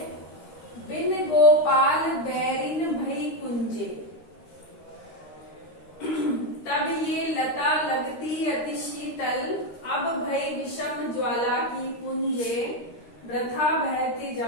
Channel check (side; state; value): right; late; 13 ms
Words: बिन गोपाल बैरिन भई कुंजे, तब ये लता लगती अति शीतल, अब भई विषम ज्वाला की पुंजे, वृथा बहती